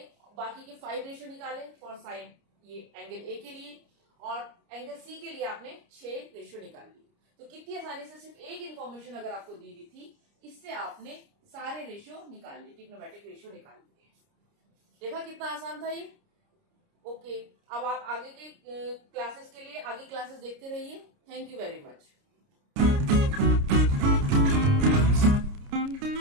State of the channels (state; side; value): late; left; 29 ms